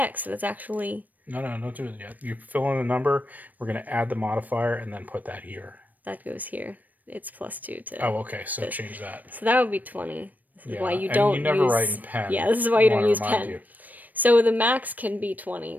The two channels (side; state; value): left; late; 0.082 ms